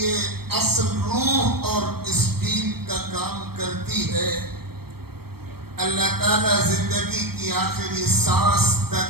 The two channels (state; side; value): late; left; 0.96 ms